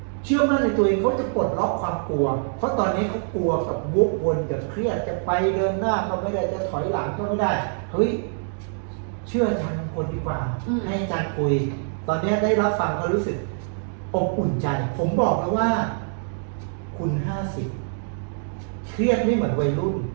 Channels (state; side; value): silent; left; digital silence